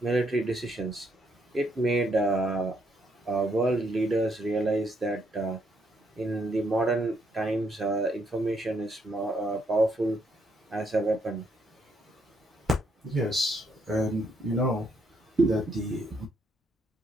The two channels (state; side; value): normal; both; correlation 0.74